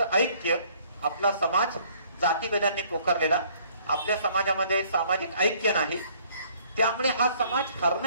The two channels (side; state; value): both; inverted; correlation -0.60